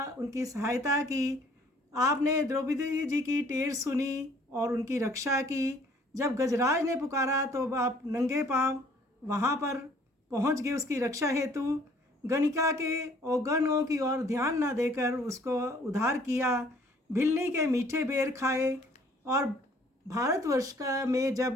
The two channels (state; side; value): normal; both; correlation 0.58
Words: उनकी सहायता की। आपने द्रौपदी जी की टेर सुनी और उनकी रक्षा की। जब गजराज ने पुकारा तो आप नंगे पांव वहाँ पर पहुँच गए उसकी रक्षा हेतु। गणिका के औगणों की ओर ध्यान न देकर उसको उद्धार किया। भिल्ली के मीठे बेर खाए। और भारतवर्ष का में